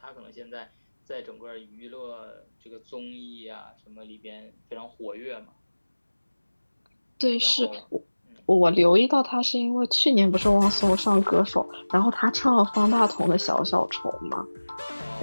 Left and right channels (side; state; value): both; inverted; correlation -1.00